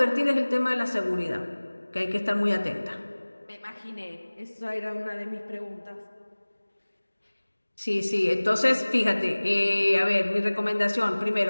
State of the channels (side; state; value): both; inverted; correlation -1.00